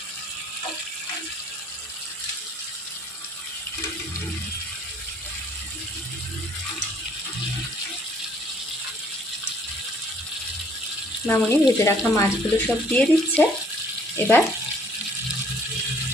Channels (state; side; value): normal; both; correlation 0.61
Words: মামুনি ভেজে রাখা মাছগুলো সব দিয়ে দিচ্ছে। এবার